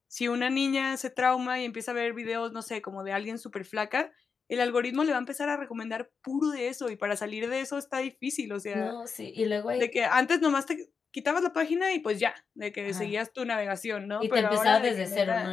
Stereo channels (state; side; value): quieter; right; 5.6 dB